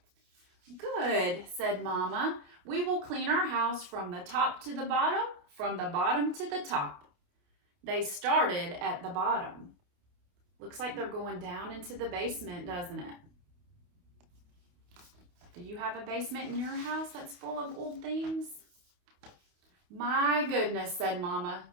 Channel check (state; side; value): late; left; 28 ms